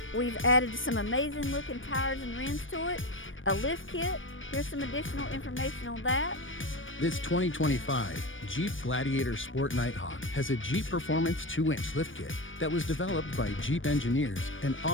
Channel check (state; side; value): late; right; 0.57 ms